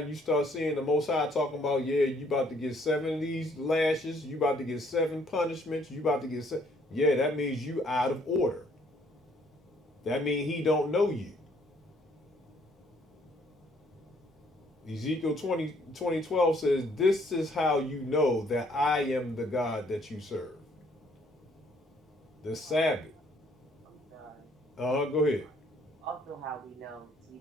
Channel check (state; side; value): normal; both; correlation 0.64